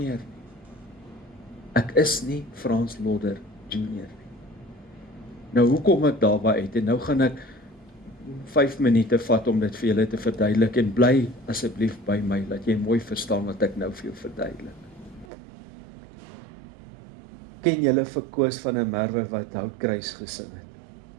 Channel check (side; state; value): left; drops out; at 15.2 s